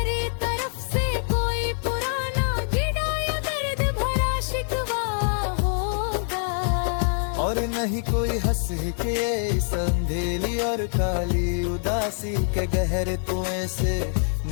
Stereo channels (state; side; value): silent; right; 62 dB below the other